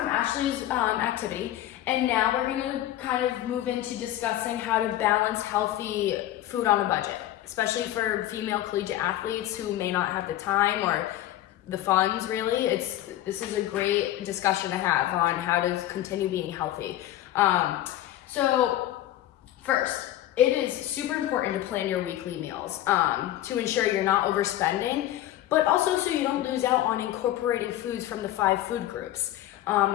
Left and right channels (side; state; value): right; quieter; 13.7 dB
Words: Ashley's activity, and now we're gonna kind of move into discussing how to balance healthy food on a budget, especially for female collegiate athletes who may not have the time or the funds, really. This is a great discussion to have on how to continue being healthy. So first, it is super important to plan your weekly meals to ensure you're not overspending, but also so you don't lose out on incorporating foods from the 5 food groups